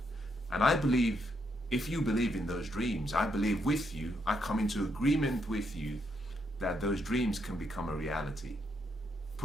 And I believe, if you believe in those dreams, I believe with you, I come into agreement with you that those dreams can become a reality.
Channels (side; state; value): both; normal; correlation 0.77